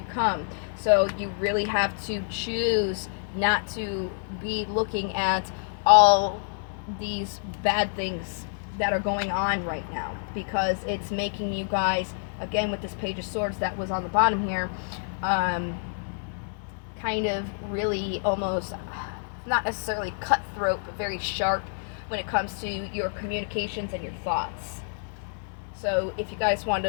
come. So you really have to choose not to be looking at all these bad things that are going on right now, because it's making you guys, again with this Page of Swords that was on the bottom here, kind of really almost not necessarily cutthroat, but very sharp when it comes to your communications and your thoughts. So if you guys want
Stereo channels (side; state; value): right; silent; 57 dB below the other